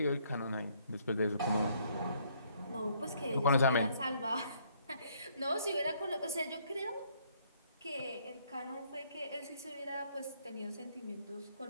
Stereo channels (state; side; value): inverted; both; correlation -0.67